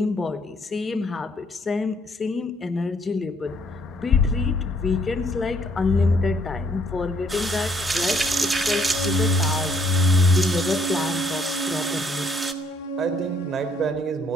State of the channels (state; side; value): normal; both; correlation 0.67